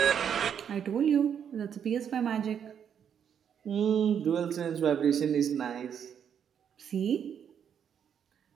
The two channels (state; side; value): quieter; left; 8.2 dB